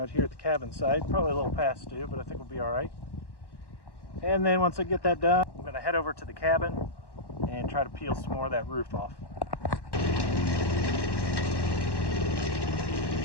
here at the cabin site. Probably a little past due, but I think we'll be all right. And then once I get that done, I'm going to head over to the cabin and try to peel some more of that roof off.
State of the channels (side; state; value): right; late; 1.1 ms